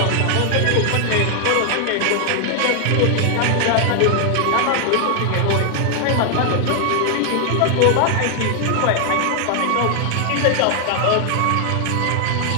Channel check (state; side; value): different; both; correlation 0.00